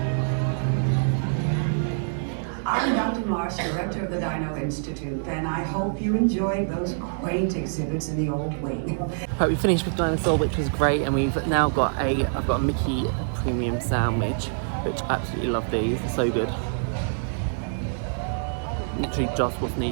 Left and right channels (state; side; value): silent; left; digital silence